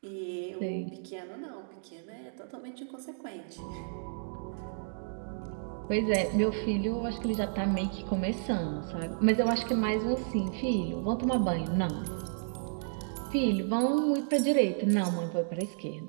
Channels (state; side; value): silent; left; digital silence